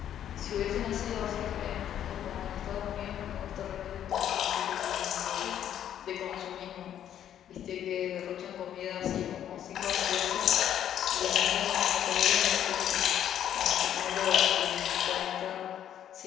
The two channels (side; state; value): right; quieter; 10.3 dB